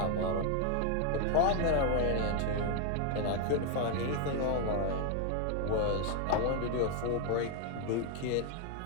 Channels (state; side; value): different; both; correlation 0.00